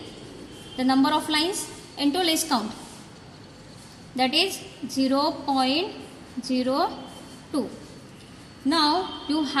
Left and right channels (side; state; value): both; identical; correlation 1.00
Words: the number of lines, into least count, that is 0.02. Now you